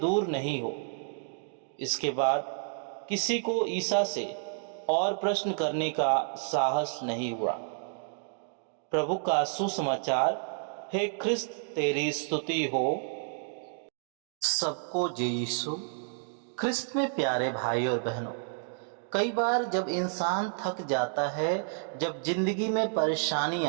दूर नहीं हो। इसके बाद किसी को ईसा से और प्रश्न करने का साहस नहीं हुआ। प्रभु का सुसमाचार। हे ख्रिस्त, तेरी स्तुति हो। सबको जय यीशु। ख्रिस्त में प्यारे भाई और बहनों, कई बार जब इंसान थक जाता है, जब जिंदगी में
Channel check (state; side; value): silent; left; digital silence